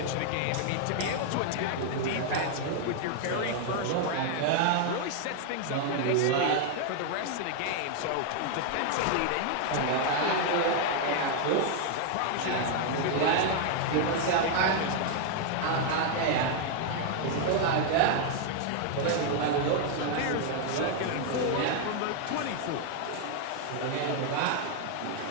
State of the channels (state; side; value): different; both; correlation 0.00